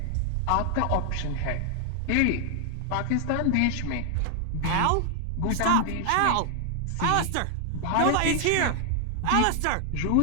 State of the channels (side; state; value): both; different; correlation 0.00